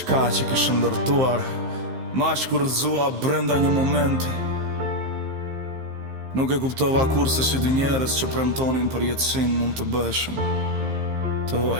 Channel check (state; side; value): late; left; 15 ms